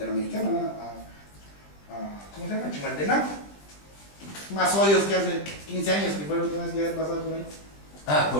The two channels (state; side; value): late; right; 20 ms